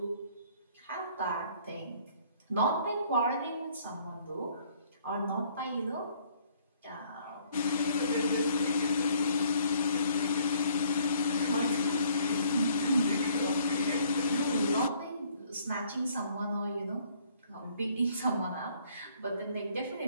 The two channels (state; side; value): inverted; both; correlation -0.61